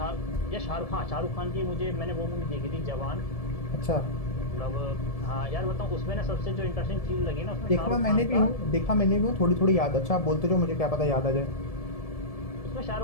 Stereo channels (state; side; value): late; right; 1.7 ms